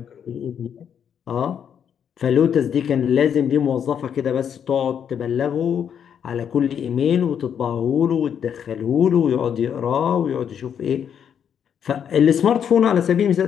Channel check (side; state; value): right; quieter; 8.3 dB